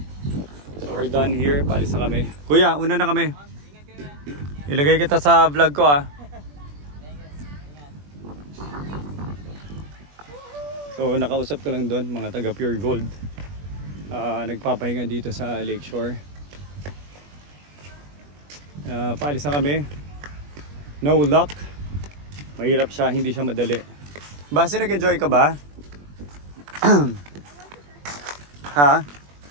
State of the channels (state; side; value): late; left; 21 ms